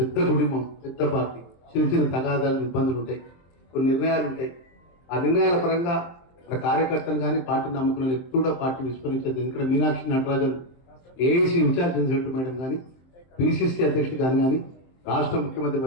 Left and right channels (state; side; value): late; right; 23 ms